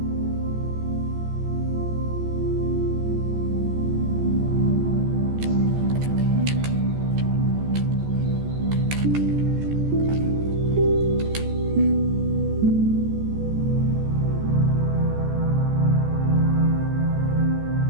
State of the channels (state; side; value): late; left; 14 ms